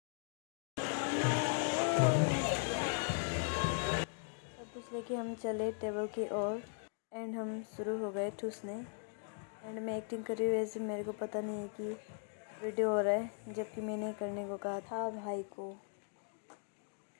लेके हम चले टेबल की ओर एंड हम शुरू हो गए ठूसने एंड मैं एक्टिंग कर रही हूँ वैसे मेरे को पता नहीं है कि वीडियो हो रहा है, जबकि मैंने करने को कहा था भाई को।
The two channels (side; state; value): right; silent; 52 dB below the other